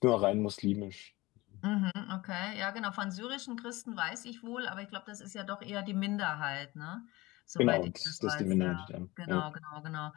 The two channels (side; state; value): right; quieter; 20.7 dB